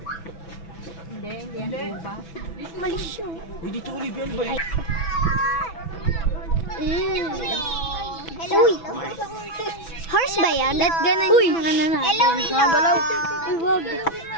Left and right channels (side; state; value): right; late; 6.0 ms